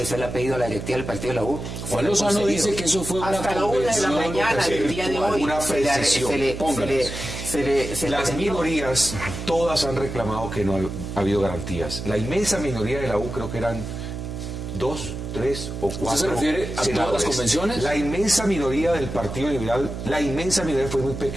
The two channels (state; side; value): noise; right; hum, 7 dB below the sound